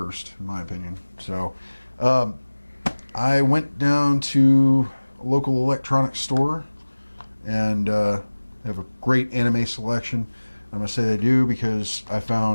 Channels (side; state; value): both; inverted; correlation -1.00